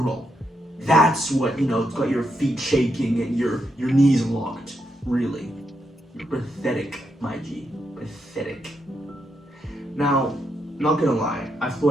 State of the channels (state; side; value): normal; both; correlation 0.81